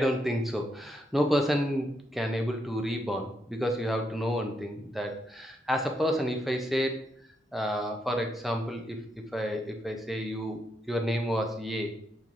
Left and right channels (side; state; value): both; normal; correlation 0.79